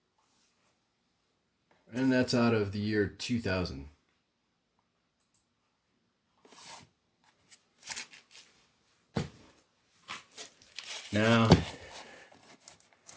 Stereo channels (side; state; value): both; identical; correlation 1.00